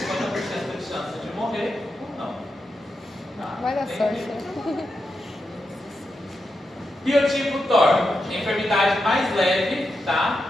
de chance de morrer ou não. Tá? Vai dar sorte, né? Biotipo TOR, enfermidade mais leve,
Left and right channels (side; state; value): both; normal; correlation 0.87